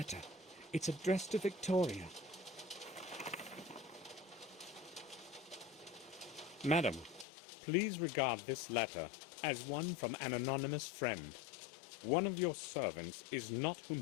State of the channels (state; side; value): drops out; right; at 7.2 s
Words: It's addressed to Victoria. Madam, please regard this letter as one from an anonymous friend. One of your servants is not whom